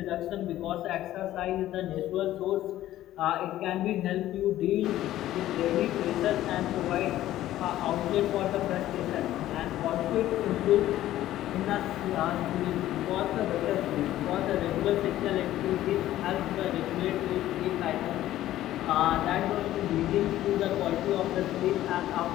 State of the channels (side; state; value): right; quieter; 13.9 dB